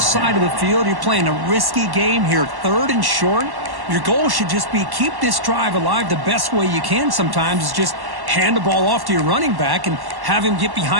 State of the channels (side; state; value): left; late; 1.1 ms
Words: of the field, you're playing a risky game here, 3rd and short. Your goal should just be keep this drive alive the best way you can sometimes is just hand the ball off to your running back and have him get